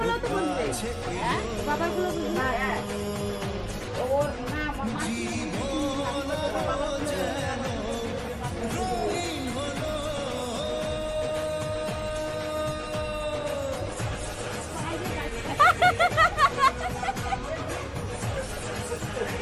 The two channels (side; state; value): both; identical; correlation 1.00